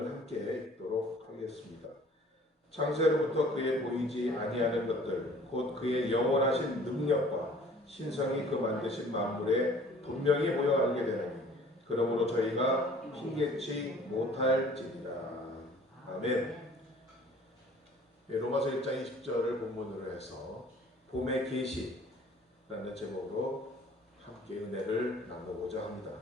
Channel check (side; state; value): both; normal; correlation 0.52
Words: 함께 읽도록 하겠습니다. 창세로부터 그의 보이지 아니하는 것들 곧 그의 영원하신 능력과 신성이 그 만드신 만물에 분명히 보여 알게 되나니 그러므로 저희가 힘겹지 못할지니라. 아멘. 로마서 1장 20절을 본문으로 해서 봄의 계시라는 제목으로 함께 은혜를 나누고자